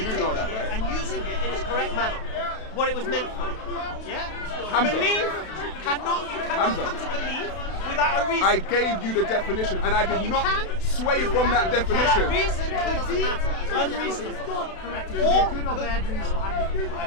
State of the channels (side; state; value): right; late; 32 ms